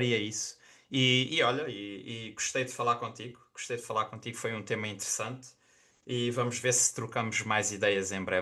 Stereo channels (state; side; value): identical; both; correlation 1.00